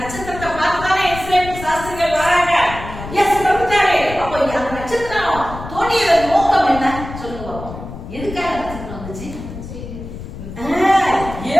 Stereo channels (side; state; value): left; noise; rumble, 11 dB below the sound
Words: நட்சத்திரத்தை பார்த்துதானே இஸ்ரேல் சாஸ்திரிகள் வராங்க. இயேசு பிறந்தாரு. அப்போ அந்த நட்சத்திரம் தோன்றியதன் நோக்கம் என்ன சொல்லுங்க பாப்போம். எதுக்காக நட்சத்திரம் வந்துச்சு?